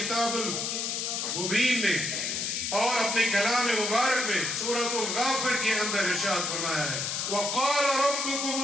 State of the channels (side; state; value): left; noise; hiss, 1 dB below the sound